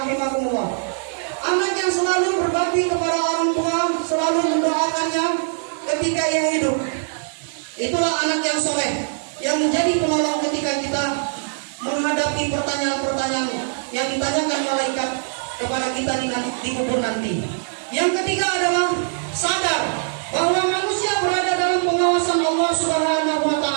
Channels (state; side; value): silent; left; 64 dB below the other